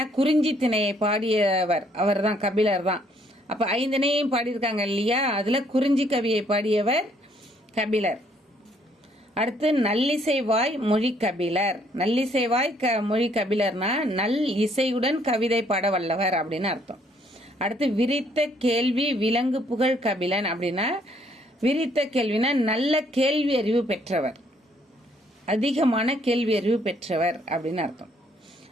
குறிஞ்சி திணையை பாடியவர் அவர் தான், கபிலர் தான். அப்ப 5 திணையும் பாடியிருக்காங்க இல்லையா? அதுல குறிஞ்சி கவியை பாடியவர் கபிலர். அடுத்து நல்லிசைவாய் மொழி கபிலர். நல்லிசைவாய் மொழி கபிலர்னா நல் இசையுடன் கவிதை பாட வல்லவர் அப்படின்னு அர்த்தம். அடுத்து விரித்த கேள்வி விலங்கு புகழ் கபிலன் அப்படின்னா, விரித்த கேள்வினா நல்ல கேள்வி அறிவு பெற்றவர், அதிகமான கேள்வி அறிவு பெற்றவர் அப்படின்னு அர்த்தம்.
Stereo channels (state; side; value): normal; both; correlation 0.67